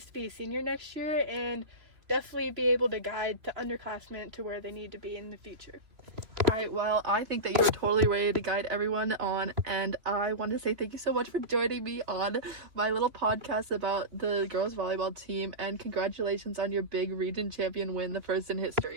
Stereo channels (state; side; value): late; left; 3.1 ms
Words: to be a senior next year and definitely be able to guide the underclassmen to where they need to be in the future. All right, well, I think that you were totally ready to guide everyone on, and I want to say thank you so much for joining me on my little podcast about the girls volleyball team, and congratulations on your big region champion win, the first in